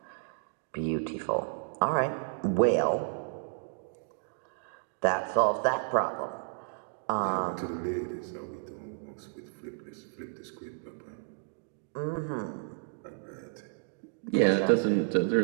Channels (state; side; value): silent; left; digital silence